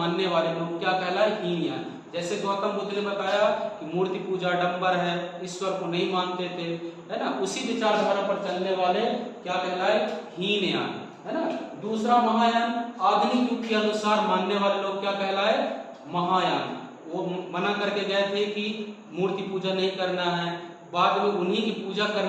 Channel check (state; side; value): identical; both; correlation 1.00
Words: वाले लोग क्या कहलाए? हीनयान। जैसे गौतम बुद्ध ने बताया कि मूर्ति पूजा डंबर है, ईश्वर को नहीं मानते थे, है ना, उसी विचारधारा पर चलने वाले क्या कहलाए? हीनयान, है ना। दूसरा महायान, आधुनिक युग के अनुसार मानने वाले लोग क्या कहलाए? महायान। वो मना करके गए थे कि मूर्ति पूजा नहीं करना है, बाद में उन्हीं की पूजा